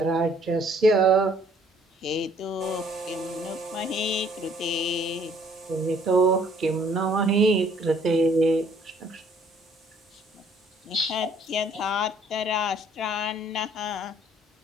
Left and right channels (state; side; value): normal; both; correlation 0.60